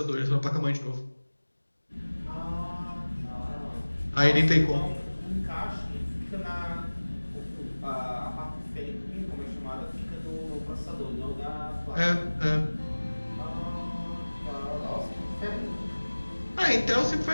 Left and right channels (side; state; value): both; inverted; correlation -1.00